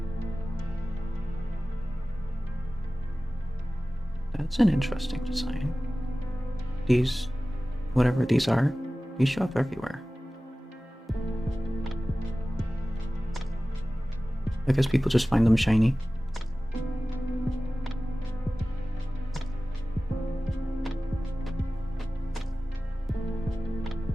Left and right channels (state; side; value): normal; both; correlation 0.97